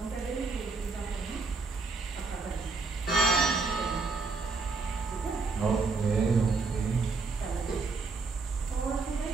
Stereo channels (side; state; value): left; quieter; 4.2 dB